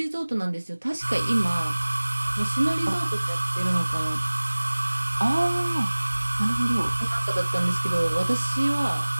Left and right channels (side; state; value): both; inverted; correlation -1.00